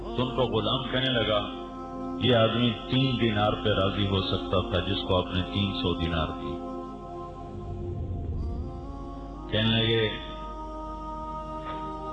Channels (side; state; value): both; identical; correlation 1.00